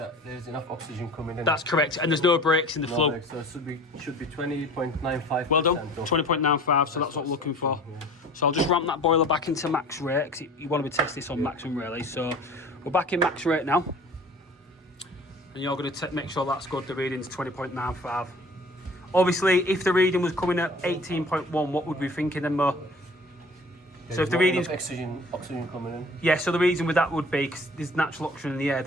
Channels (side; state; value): both; normal; correlation 0.45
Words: there's enough oxygen coming in. That's correct, and there's no breaks in the flow. So it should be 20.95%. Well done, 20.95, so that's what we're looking for. Yeah. So I'll just ramp that boiler back into max rate, because you want to be testing this on maximum really. So we're back in max rate now. And you're going to make sure that's good, the reading's 20.95. Obviously, if the reading was coming at 18.1, what would we be thinking then, Mo? So if the readings, oxygen coming in. yeah, so the reason with that would be because there's natural oxygen in the air.